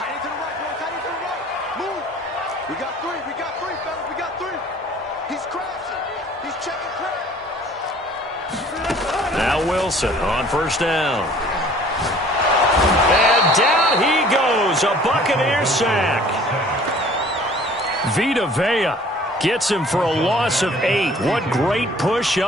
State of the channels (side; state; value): both; normal; correlation 0.52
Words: We got three, fellas, we got three. He's crashing. He's checking crash. Now Wilson on first down. And down he goes. A Buccaneers sack. Vita Vea gets him for a loss of 8. What great push